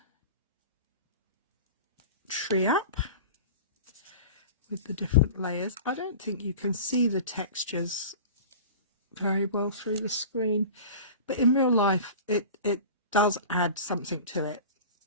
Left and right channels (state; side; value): inverted; both; correlation -0.36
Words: tree up with the different layers. I don't think you can see the textures very well through the screen, but in real life it does add something to it,